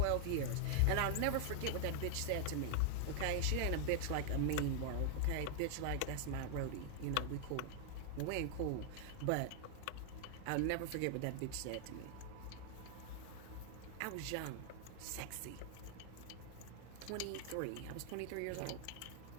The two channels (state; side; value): different; both; correlation 0.00